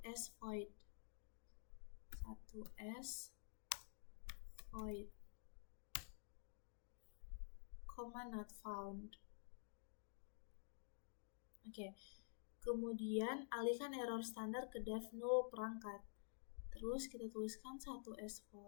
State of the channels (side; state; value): right; silent; digital silence